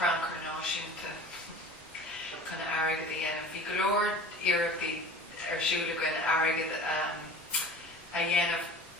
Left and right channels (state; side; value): normal; both; correlation 0.41